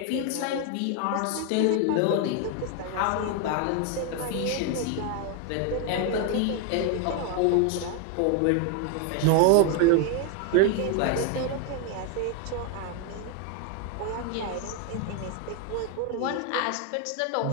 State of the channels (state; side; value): different; both; correlation 0.00